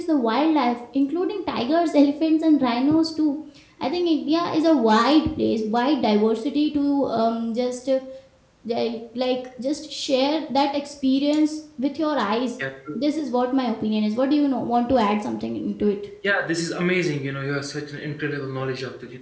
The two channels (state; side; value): identical; both; correlation 1.00